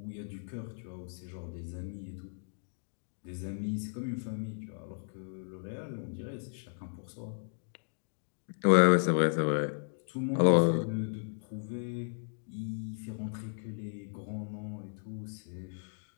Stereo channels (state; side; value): silent; right; digital silence